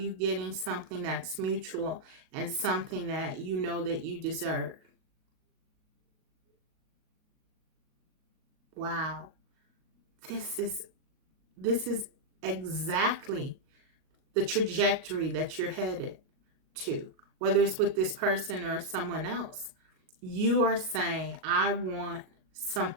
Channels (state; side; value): late; left; 38 ms